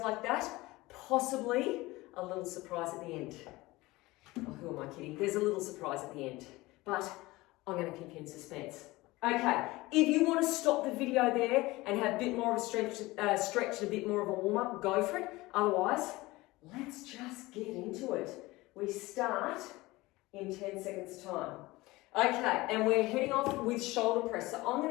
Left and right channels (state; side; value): quieter; right; 20.3 dB